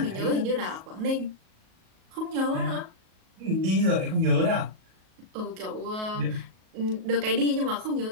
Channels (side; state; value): left; late; 37 ms